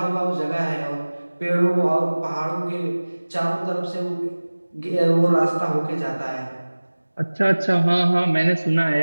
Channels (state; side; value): inverted; both; correlation -1.00